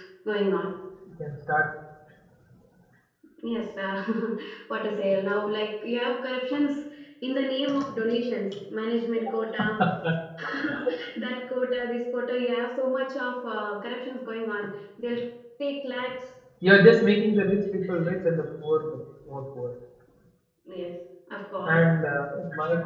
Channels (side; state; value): both; identical; correlation 1.00